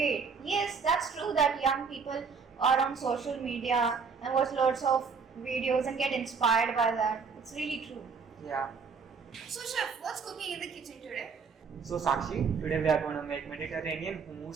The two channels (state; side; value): quieter; left; 5.4 dB